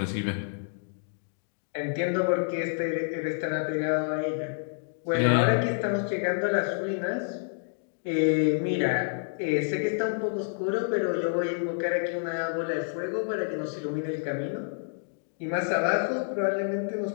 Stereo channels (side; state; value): right; silent; digital silence